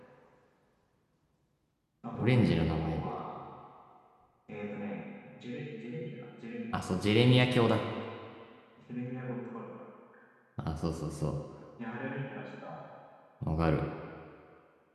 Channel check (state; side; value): identical; both; correlation 1.00